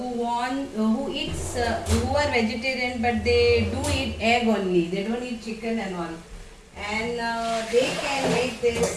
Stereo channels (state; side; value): identical; both; correlation 1.00